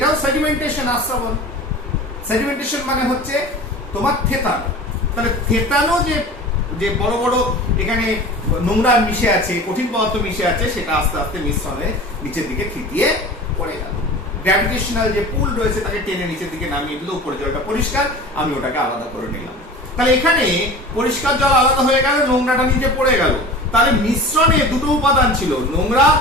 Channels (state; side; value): normal; both; correlation 0.37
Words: সেডিমেন্টেশন, আস্রাবণ। সেডিমেন্টেশন মানে হচ্ছে তোমার থেতানো। তাহলে থেতানো যে বড় বড় এখানে নোংরা মিশে আছে, কঠিন পদার্থ মিশে আছে, সেটা আস্তে আস্তে মিশ্রণে নিচের দিকে থিতিয়ে পড়ে গেল। গ্র্যাভিটেশনাল যে পুল রয়েছে তাকে টেনে নিচের দিকে নামিয়ে দিল, উপরে জলটা পরিষ্কার, আমি ওটাকে আলাদা করে নিলাম। তাহলে এখানে পরিষ্কার জল আলাদা হয়ে গেল, নোংরাটা নিচে পড়ে গেল। তাহলে মিশ্রণে দুটো উপাদান ছিল, নোংরা